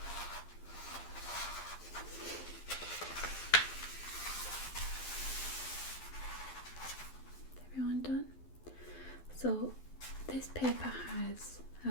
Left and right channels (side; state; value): right; late; 12 ms